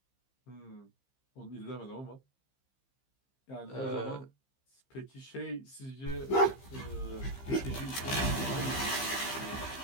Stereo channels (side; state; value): right; late; 15 ms